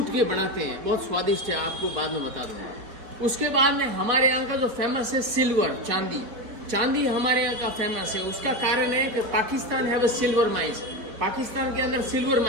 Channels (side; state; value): left; late; 4.6 ms